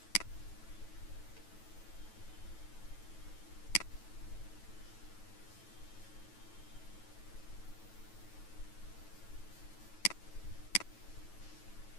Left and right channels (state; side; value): late; right; 9.2 ms